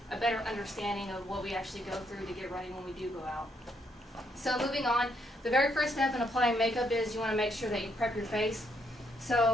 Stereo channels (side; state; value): both; normal; correlation 0.75